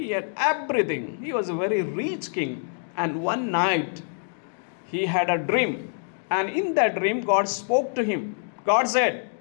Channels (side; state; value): right; silent; digital silence